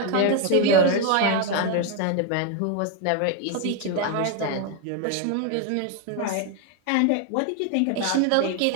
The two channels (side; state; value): both; different; correlation 0.01